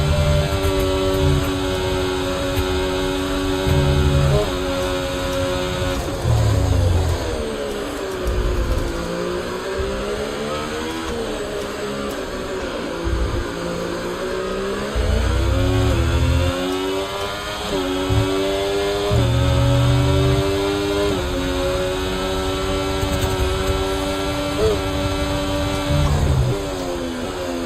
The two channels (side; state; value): both; identical; correlation 1.00